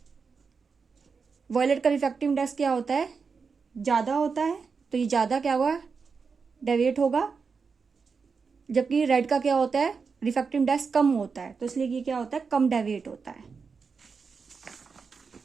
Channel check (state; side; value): quieter; left; 5.2 dB